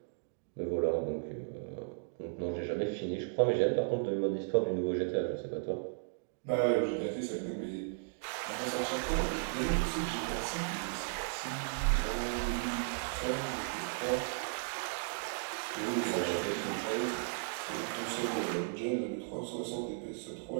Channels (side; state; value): left; silent; digital silence